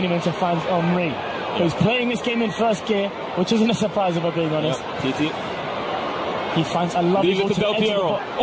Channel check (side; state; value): both; identical; correlation 1.00